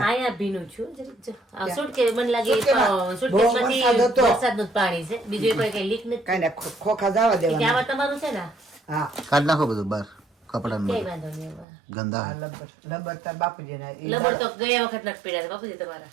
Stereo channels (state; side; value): drops out; left; at 11.7 s